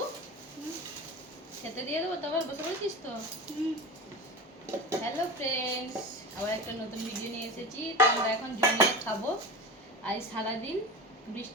খেতে দিয়ে দেবো? তারপর বসে পড়েছিস তো? হ্যালো ফ্রেন্ডস, আবার একটা নতুন ভিডিও নিয়ে এসেছি। তো আমরা এখন জমিয়ে খাবো। আজ সারাদিন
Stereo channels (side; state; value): both; normal; correlation 0.27